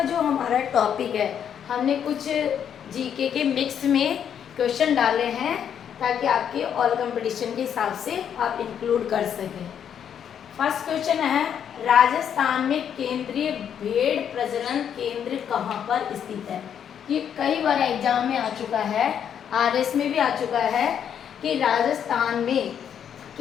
जो हमारा टॉपिक है, हमने कुछ जीके के मिक्स में क्वेश्चन डाले हैं ताकि आपके ऑल कंपटीशन के हिसाब से आप इंक्लूड कर सकें। फर्स्ट क्वेश्चन है, राजस्थान में केंद्रीय भेड़ प्रजनन केंद्र कहाँ पर स्थित है। ये कई बार एग्जाम में आ चुका है, आरएस में भी आ चुका है कि राजस्थान में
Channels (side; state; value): right; quieter; 8.6 dB